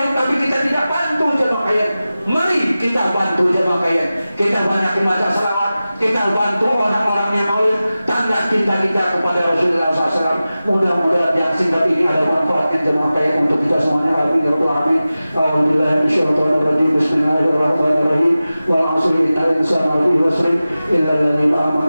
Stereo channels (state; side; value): inverted; both; correlation -0.95